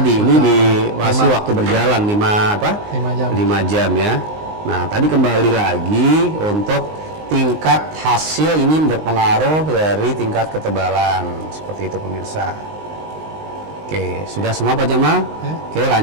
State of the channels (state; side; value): late; left; 19 ms